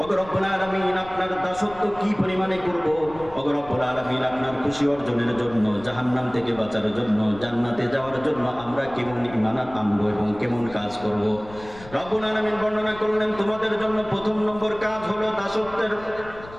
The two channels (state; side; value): noise; left; rumble, 18 dB below the sound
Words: ও রব্বুল আলামিন আপনার দাসত্ব কি পরিমাণে করব, ও রব্বুল আলামিন আপনার খুশি অর্জনের জন্য, জাহান্নাম থেকে বাঁচার জন্য, জান্নাতে যাওয়ার জন্য আমরা কেমন ঈমান আনবো এবং কেমন কাজ করব। রব্বুল আলামিন বর্ণনা করলেন, তোমাদের জন্য প্রথম নম্বর কাজ হলো দাসত্বের